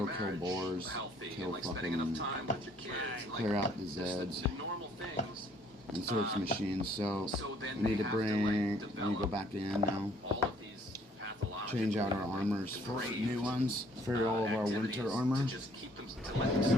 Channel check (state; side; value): normal; both; correlation 0.61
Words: your kill marriage boars, healthy kill and, like, spending enough fucking, time with your kids and, like, clear out the just Zeds, the normal things. and search machines. So So then we need they to have to, bring. like, We need to go develop back in now. all of these pathological, Change out our like, armors for depraved, new ones for all of our activities winter armor. to just keep them, to let them